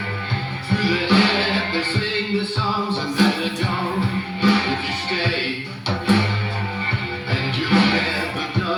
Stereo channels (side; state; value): both; identical; correlation 1.00